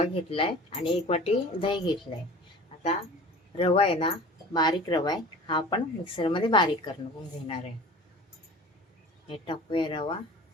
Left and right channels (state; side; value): normal; both; correlation 0.41